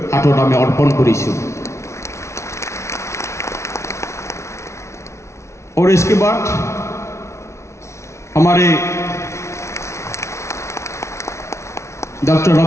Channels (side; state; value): right; late; 0.13 ms